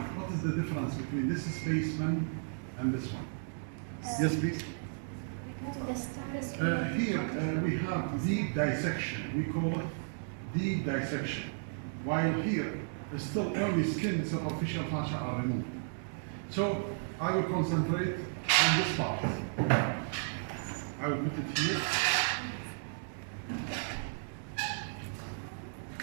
what is the difference between this spaceman and this one? Yes, please. The stars. Here we have deep dissection. We call it deep dissection. While here, still only skin, superficial fascia are removed. So I will concentrate on this part. I will put it here.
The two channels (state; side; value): silent; left; digital silence